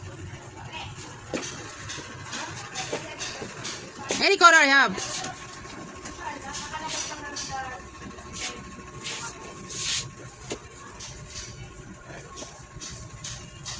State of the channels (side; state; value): both; identical; correlation 1.00